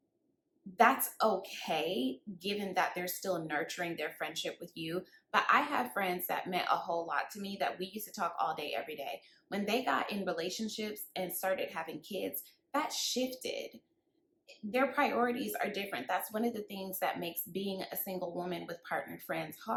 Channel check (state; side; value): identical; both; correlation 1.00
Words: That's okay, given that they're still nurturing their friendship with you. But I have friends that meant a whole lot to me that we used to talk all day, every day. When they got in relationships and started having kids, that shifted. Their priorities are different. That's one of the things that makes being a single woman with partnered friends